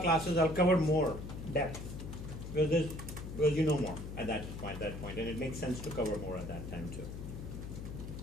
classes, I'll cover more depth. Because you know more at that point, and it makes sense to cover more at that time too.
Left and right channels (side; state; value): left; noise; hum, 8 dB below the sound